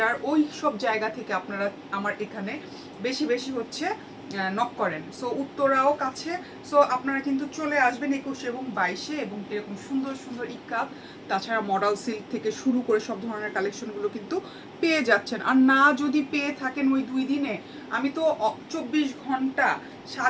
ওই সব জায়গা থেকে আপনারা আমার এখানে বেশি বেশি হচ্ছে নক করেন। সো উত্তরাও কাছে। সো আপনারা কিন্তু চলে আসবেন 21 এবং 22-এ, এবং এরকম সুন্দর সুন্দর ইক্কাত, তাছাড়া মডেল সিল্ক থেকে শুরু করে সব ধরনের কালেকশনগুলো কিন্তু পেয়ে যাচ্ছেন। আর না যদি পেয়ে থাকেন ওই 2 দিনে, আমি তো 24 ঘন্টা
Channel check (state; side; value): identical; both; correlation 1.00